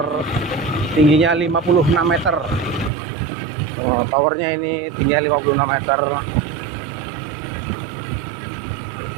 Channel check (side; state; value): left; drops out; at 2.9 s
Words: tingginya 56 meter. Towernya ini tingginya 56 meter.